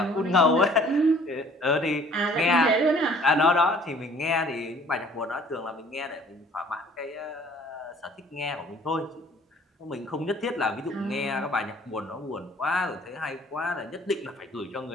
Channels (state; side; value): normal; both; correlation 0.55